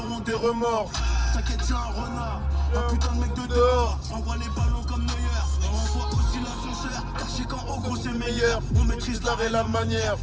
des remords. T'inquiète, je suis un renard. Un putain de mec de dehors. Envoie les ballons comme Neuer. On envoie aussi l'ascenseur. Car je sais qu'en haut gros c'est meilleur. On maîtrise l'art et la manière.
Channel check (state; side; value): identical; both; correlation 1.00